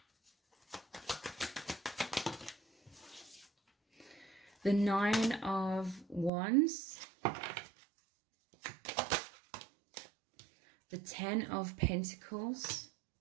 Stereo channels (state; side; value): drops out; left; at 6.3 s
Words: the 9 of Wands, the 10 of Pentacles,